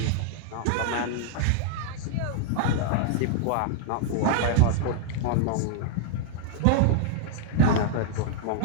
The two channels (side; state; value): both; different; correlation -0.01